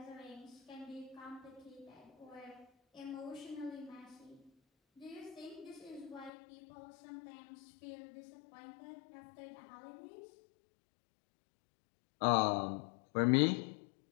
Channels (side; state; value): right; drops out; at 6.3 s